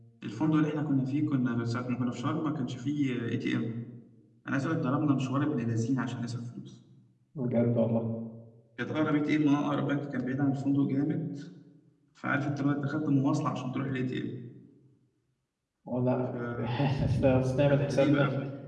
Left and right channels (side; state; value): both; identical; correlation 1.00